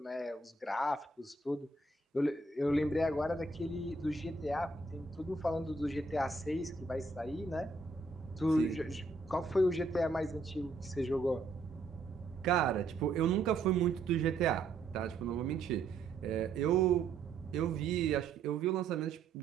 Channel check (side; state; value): left; quieter; 3.5 dB